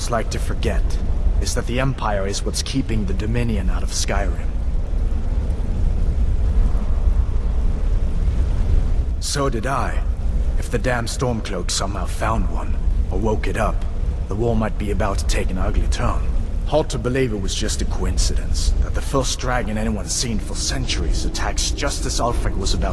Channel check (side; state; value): both; identical; correlation 1.00